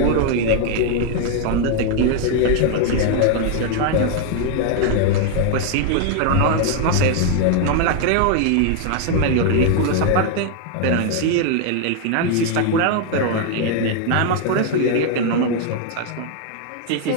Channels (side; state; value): both; different; correlation 0.00